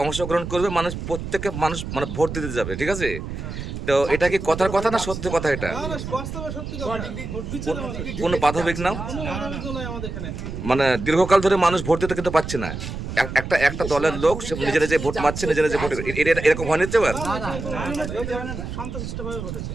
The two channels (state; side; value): noise; right; rumble, 7 dB below the sound